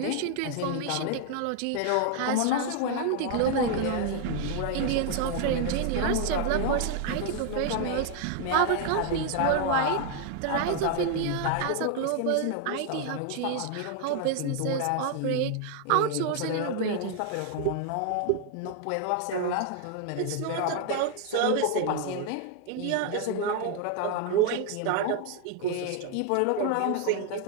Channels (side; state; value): both; different; correlation 0.00